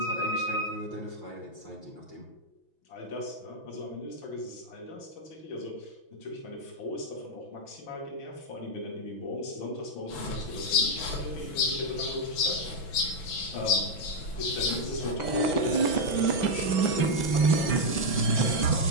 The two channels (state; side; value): late; right; 6.1 ms